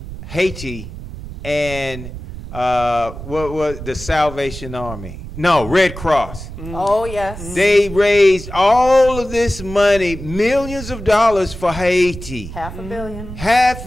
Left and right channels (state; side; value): noise; right; rumble, 11 dB below the sound